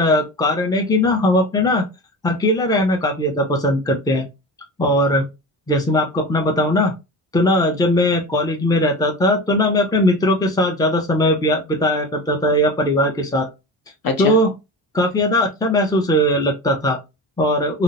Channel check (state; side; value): normal; both; correlation 0.30